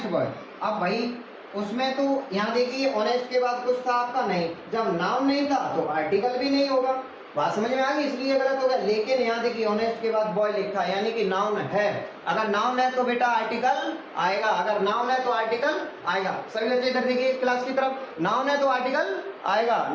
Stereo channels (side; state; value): both; identical; correlation 1.00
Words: boy. अब भाई उसमें तो यहाँ देखिए ऑनेस्ट के बाद कुछ था आपका नहीं, जब नाउन नहीं था तो आर्टिकल भी नहीं होगा, बात समझ में आ गई, इसलिए गलत हो गया। लेकिन यहाँ देखिए ऑनेस्ट के बाद बॉय लिखा है, यानी कि नाउन है, अगर नाउन है तो बेटा आर्टिकल आएगा, अगर नाउन है तो आर्टिकल आएगा। सभी बच्चे इधर देखिए क्लास की तरफ, नाउन है तो आर्टिकल आएगा,